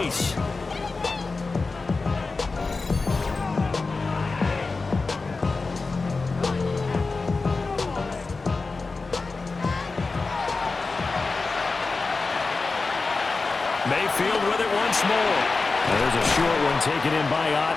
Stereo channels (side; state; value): right; quieter; 3.9 dB